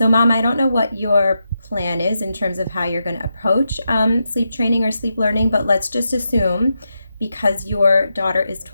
Mom, I don't know what your plan is in terms of how you're going to approach sleep training or sleep learning, but let's just assume because your daughter is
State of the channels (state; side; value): inverted; both; correlation -0.86